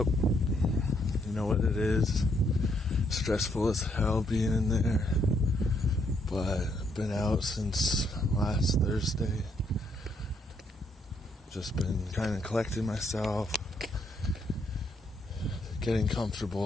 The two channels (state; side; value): normal; both; correlation 0.73